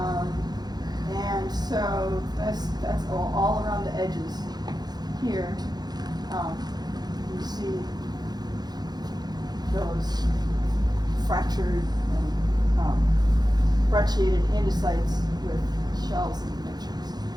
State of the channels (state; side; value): late; left; 0.19 ms